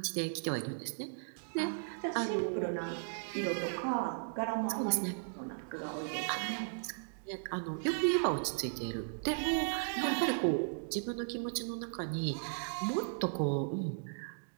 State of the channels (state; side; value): silent; left; digital silence